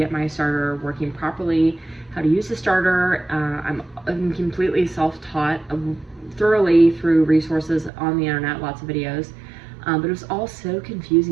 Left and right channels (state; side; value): drops out; left; at 7.9 s